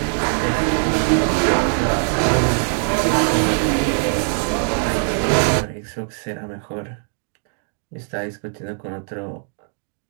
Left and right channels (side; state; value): left; silent; 59 dB below the other